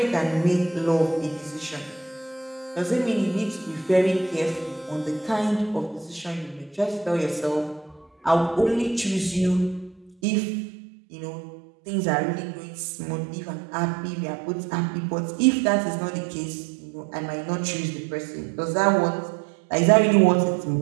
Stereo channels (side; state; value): left; drops out; at 10.2 s